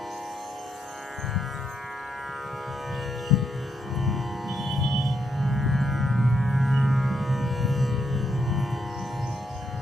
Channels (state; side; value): normal; both; correlation 0.79